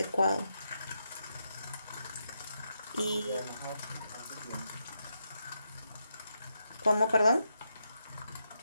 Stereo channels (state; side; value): inverted; both; correlation -0.84